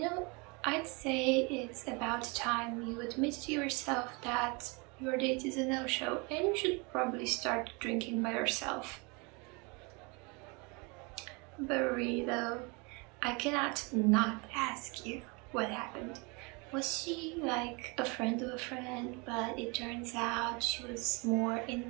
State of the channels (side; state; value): left; quieter; 29.6 dB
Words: I'd say it's about time you admit to yourself that your date is a no-show and you should probably start drinking by yourself. But really though, I cannot not ask you what happened. Was she like a friend of a friend, but it turns out she was more